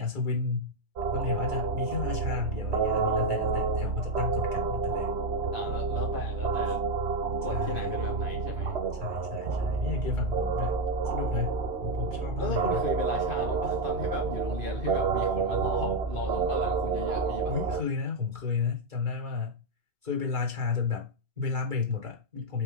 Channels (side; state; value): left; late; 2.2 ms